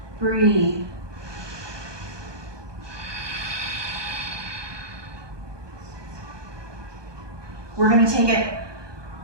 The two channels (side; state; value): left; late; 1.2 ms